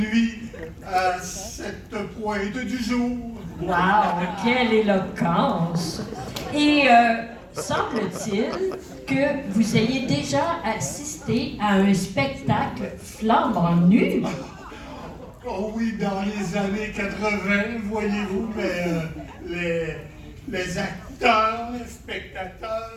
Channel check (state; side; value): identical; both; correlation 1.00